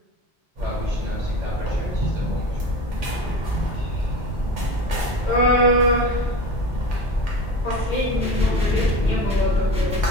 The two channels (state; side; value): normal; both; correlation 0.32